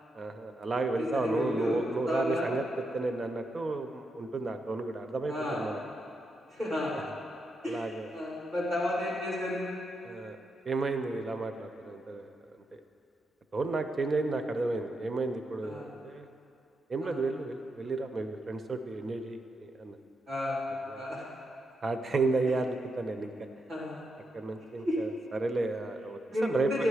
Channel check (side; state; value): both; normal; correlation 0.83